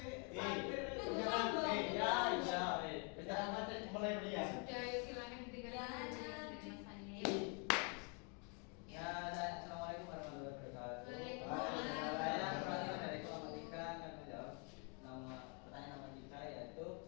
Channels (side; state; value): right; quieter; 36.6 dB